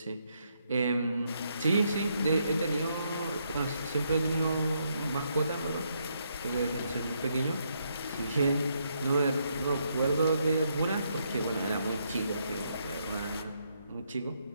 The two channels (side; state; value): both; inverted; correlation -0.76